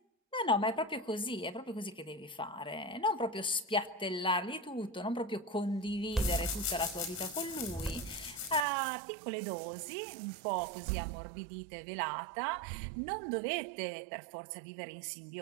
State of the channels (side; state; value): left; drops out; at 8.7 s